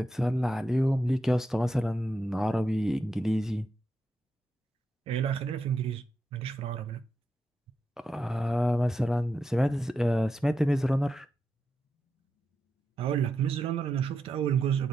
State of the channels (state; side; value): normal; both; correlation 0.87